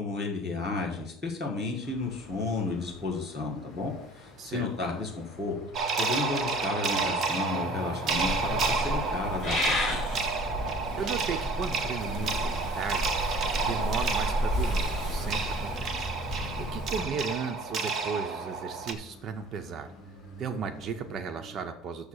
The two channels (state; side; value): normal; both; correlation 0.48